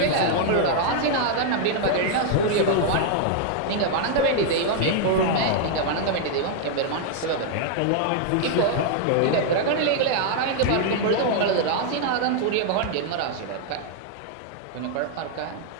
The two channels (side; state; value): both; different; correlation 0.00